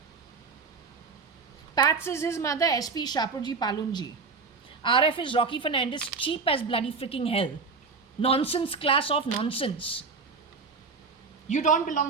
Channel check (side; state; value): left; quieter; 4.7 dB